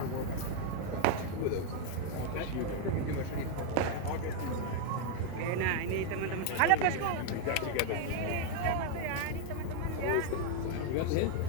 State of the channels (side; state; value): both; different; correlation 0.00